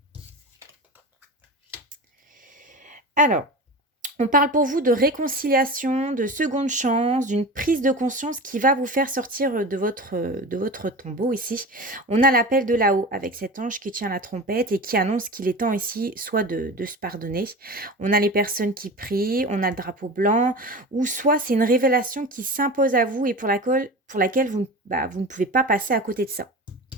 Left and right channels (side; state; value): both; normal; correlation 0.31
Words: Alors, on parle pour vous de réconciliation, de seconde chance, d'une prise de conscience qui va vous faire sortir de votre tombeau ici. On a l'appel de là-haut avec cet ange qui tient la trompette et qui annonce qu'il est temps ici soit de se pardonner. On a les personnes qui prient, on a le drapeau blanc, ou soit c'est une révélation qui s'impose à vous et pour laquelle vous ne pouvez pas passer à côté de ça.